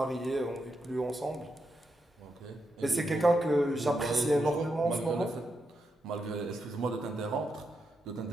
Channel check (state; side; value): normal; both; correlation 0.84